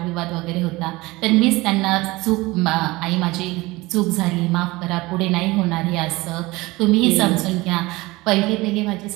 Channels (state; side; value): quieter; left; 21.2 dB